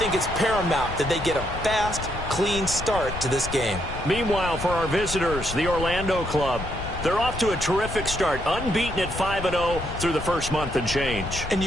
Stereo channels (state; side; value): noise; left; rumble, 8 dB below the sound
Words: it's paramount that they get a fast, clean start to this game. Meanwhile, for our visitors, the Orlando club, they're off to a terrific start, unbeaten at 5-0 through the first month and change. And